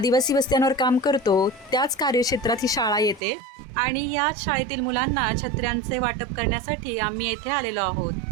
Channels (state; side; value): drops out; left; at 3.2 s